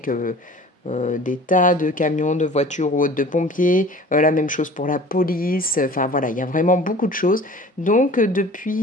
des tas de camions, de voitures ou autres, de pompiers. La même chose pour la police. Enfin voilà, il y a vraiment beaucoup de choses. Donc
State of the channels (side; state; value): both; normal; correlation 0.44